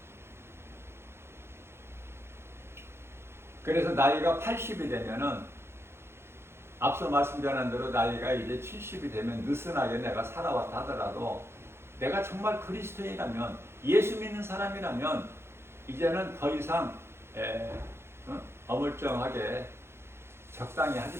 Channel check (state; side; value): late; left; 0.12 ms